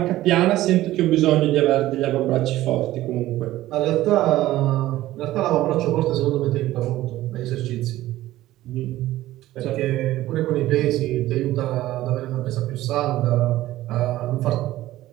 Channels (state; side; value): quieter; left; 15.5 dB